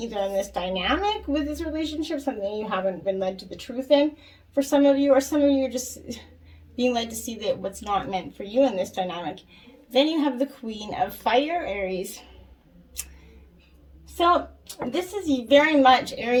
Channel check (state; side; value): identical; both; correlation 1.00